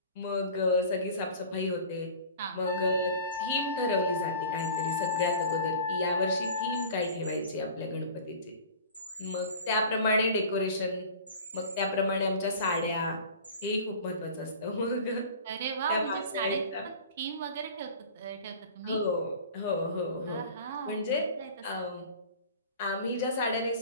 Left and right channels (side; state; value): both; inverted; correlation -0.40